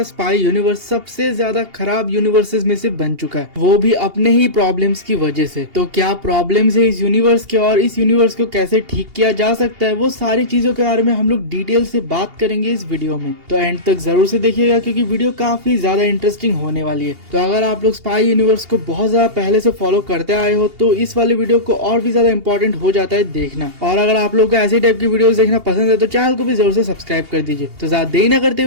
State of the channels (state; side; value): late; left; 2.8 ms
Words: स्पाई यूनिवर्स सबसे ज्यादा खराब यूनिवर्सेस में से बन चुका है, वो भी अपने ही प्रॉब्लम्स की वजह से। तो क्या प्रॉब्लम्स है इस यूनिवर्स के और इस यूनिवर्स को कैसे ठीक किया जा सकता है, वो सारी चीजों के बारे में हम लोग डिटेल से बात करेंगे इस वीडियो में। तो एंड तक जरूर से देखिएगा क्योंकि वीडियो काफी ज्यादा इंटरेस्टिंग होने वाली है। तो अगर आप लोग स्पाई यूनिवर्स को बहुत ज्यादा पहले से फॉलो करते आए हो तो इस वाले वीडियो को और भी ज्यादा इंपॉर्टेंट हो जाता है देखना। और अगर आप लोग को ऐसी टाइप की वीडियोस देखना पसंद है तो चैनल को भी जरूर से सब्सक्राइब कर दीजिए। तो ज्यादा देरी न करते